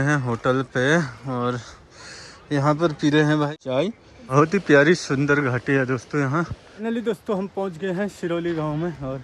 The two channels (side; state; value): both; identical; correlation 1.00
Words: हैं होटल पे और यहाँ पर पी रहे हैं भाई चाय। बहुत ही प्यारी सुंदर घाटी है दोस्तों यहाँ। फाइनली दोस्तों हम पहुँच गए हैं सिरौली गाँव में और